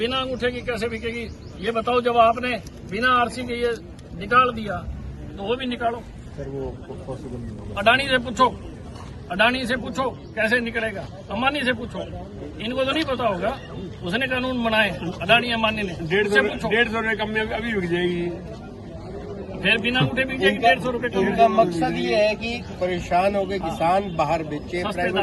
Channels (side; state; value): both; identical; correlation 1.00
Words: अंगूठे की कैसे बिकेगी ये बताओ? जब आपने बिना आरसी के ये निकाल दिया तो वो भी निकालो। सर वो पॉसिबल नहीं होगा। अडानी से पूछो, अडानी से पूछो कैसे निकलेगा, अंबानी से पूछो, इनको तो नहीं पता होगा, उसने कानून बनाए अडानी अंबानी ने। 150 रुपए कम में अभी बिक जाएगी, फिर बिना अंगूठे बिक जाएगी 150 रुपए कम। उनका मकसद ये है कि परेशान हो गए किसान बाहर बेचे, सस्ते